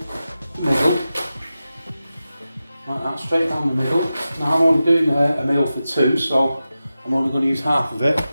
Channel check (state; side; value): inverted; both; correlation -0.93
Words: middle, like that, straight down the middle. Now I'm only doing a meal for two, so I'm only going to use half of it,